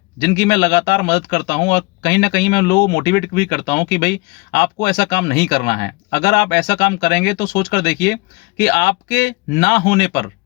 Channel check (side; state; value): right; quieter; 26.6 dB